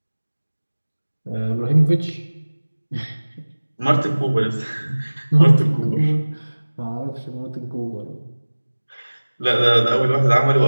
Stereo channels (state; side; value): inverted; both; correlation -1.00